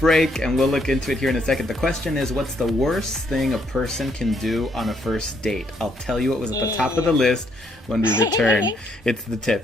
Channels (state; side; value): normal; both; correlation 0.71